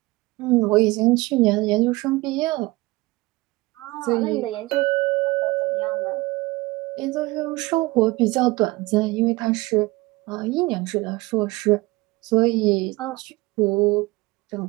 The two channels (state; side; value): quieter; left; 21.7 dB